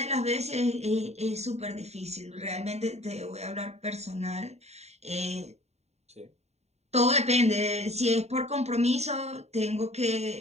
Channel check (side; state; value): left; late; 0.32 ms